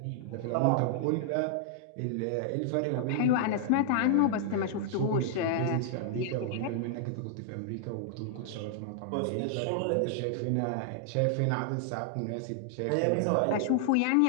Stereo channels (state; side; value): different; both; correlation -0.01